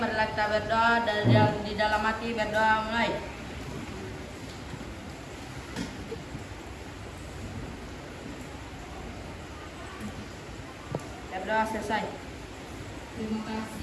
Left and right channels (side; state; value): both; identical; correlation 1.00